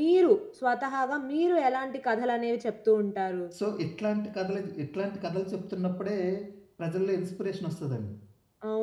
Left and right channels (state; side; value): identical; both; correlation 1.00